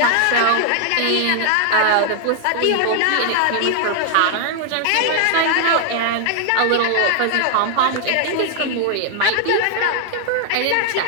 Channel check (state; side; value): different; both; correlation 0.00